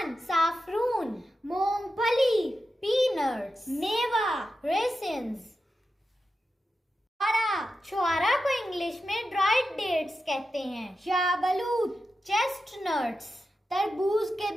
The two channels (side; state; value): both; normal; correlation 0.90